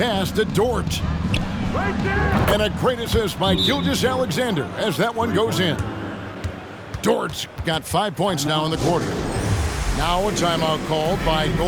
to Dort. And a great assist by Gilgeous Alexander as that one goes in. Dort's got 5 points now in the quarter. Now a timeout called by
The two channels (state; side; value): identical; both; correlation 1.00